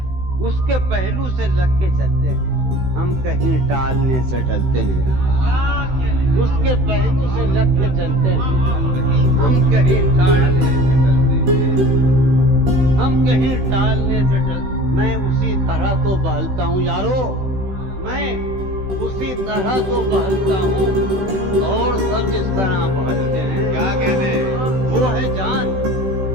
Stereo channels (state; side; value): late; left; 16 ms